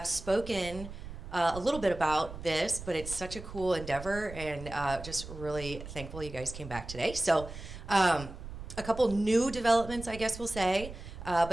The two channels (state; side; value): noise; right; rumble, 12 dB below the sound